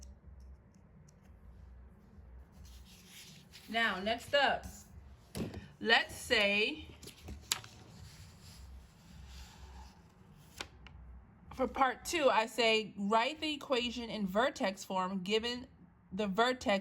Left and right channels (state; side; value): identical; both; correlation 1.00